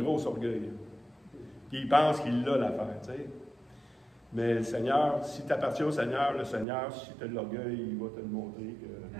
grosse orgueil. Puis il pense qu'il l'a l'affaire, tu sais. Mais le Seigneur, si tu appartiens au Seigneur, le Seigneur, si tu as de l'orgueil, il va te le montrer que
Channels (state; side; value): drops out; left; at 6.7 s